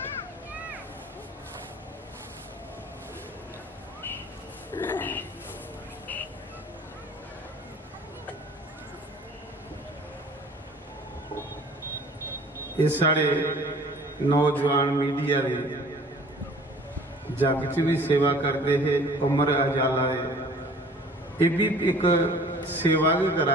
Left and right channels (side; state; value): both; normal; correlation 0.50